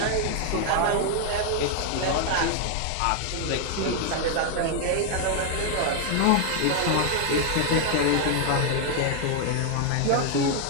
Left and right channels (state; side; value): different; both; correlation 0.00